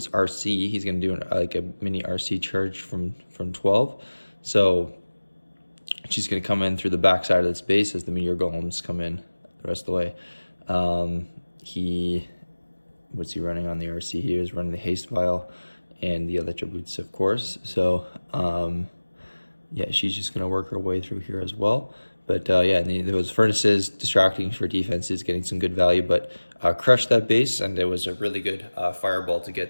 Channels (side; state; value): both; inverted; correlation -1.00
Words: RC. He's going to do like a mini RC charge from 12. So she's going to come in through the back side of this base as the Meteor Golems come in the rest of the way. What's he running on the RC? He was running the Haste Vial and the Electro Boots, of course. So yeah, she's just going to work her way through here as well. But yeah, and those furnaces distracting for defenses, getting some good value, but crushed that base, and it was a really good fireball to